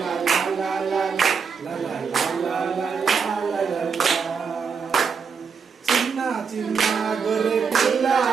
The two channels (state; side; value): quieter; left; 5.9 dB